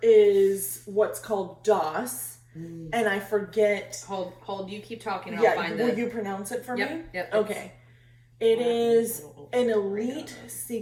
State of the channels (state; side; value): identical; both; correlation 1.00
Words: is what's called DOS, and I forget. Hold. You keep talking. And I'll find will you pronounce it for me? Yep. Okay. It is an elite